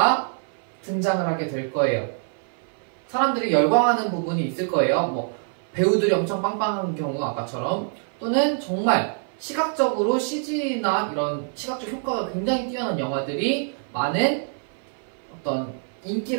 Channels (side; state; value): left; silent; 57 dB below the other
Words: 등장을 하게 될 거예요. 사람들이 열광하는 부분이 있을 거예요. 뭐 배우들이 엄청 빵빵한 경우 아까처럼 또는 정말 시각적으로 CG나 이런 시각적 효과가 굉장히 뛰어난 영화들이 많은 어떤